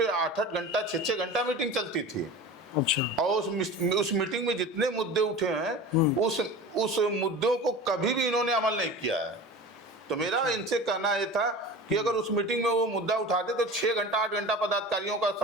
8-8 घंटा, 6-6 घंटा मीटिंग चलती थी। अच्छा, और उस मीटिंग में जितने मुद्दे उठे हैं, उस मुद्दों को कभी भी इन्होंने अमल नहीं किया है। तो मेरा इनसे कहना यह था कि अगर उस मीटिंग में वो मुद्दा उठाते तो 6 घंटा 8 घंटा पदाधिकारियों का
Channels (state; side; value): normal; both; correlation 0.34